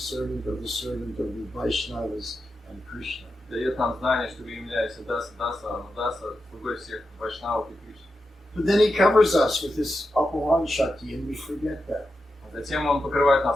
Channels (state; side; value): normal; both; correlation 0.89